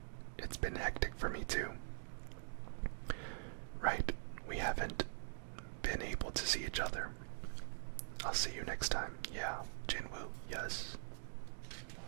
It's been hectic for me too. Right, we haven't been able to see each other. I'll see you next time. Yeah, Jinwoo, yes.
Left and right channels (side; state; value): left; silent; digital silence